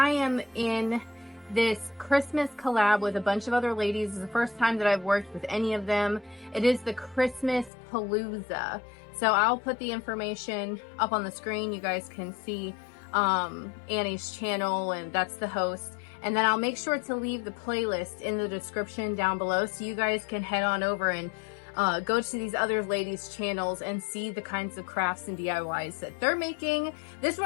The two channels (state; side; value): drops out; right; at 7.7 s